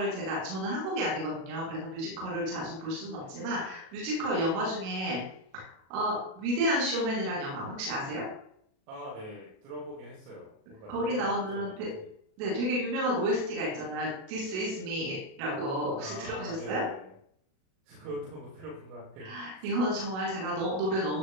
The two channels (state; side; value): late; left; 37 ms